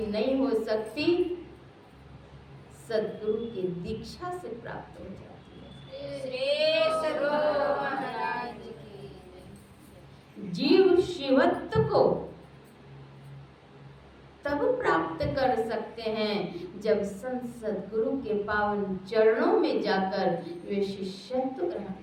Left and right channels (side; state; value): both; identical; correlation 1.00